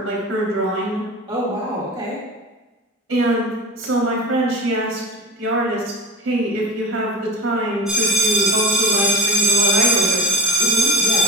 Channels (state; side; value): normal; both; correlation 0.30